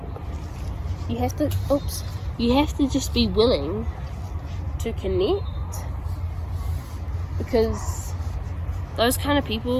You have to just be willing to connect, because those kind of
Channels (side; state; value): both; identical; correlation 1.00